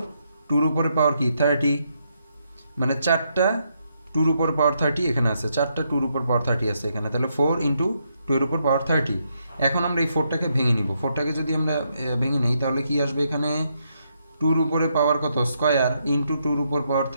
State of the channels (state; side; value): inverted; both; correlation -0.78